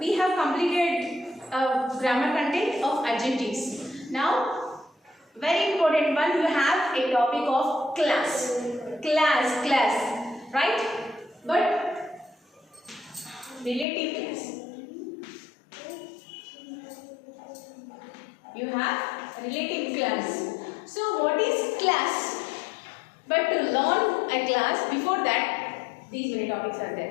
have completed grammar content of adjectives. Now, very important one, you have a topic of class. Class, right? But relative class. You have relative class. So, what is class? But to learn a class, before that, these many topics are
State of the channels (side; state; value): right; drops out; at 13.9 s